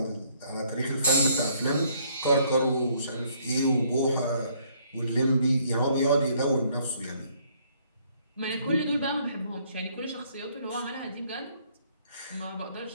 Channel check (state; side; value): inverted; both; correlation -0.66